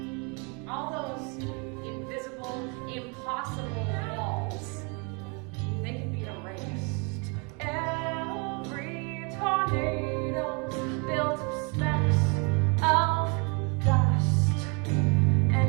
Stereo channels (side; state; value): left; quieter; 33.3 dB